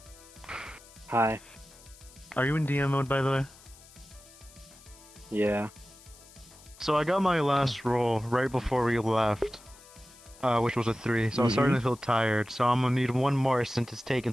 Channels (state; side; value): noise; left; hiss, 23 dB below the sound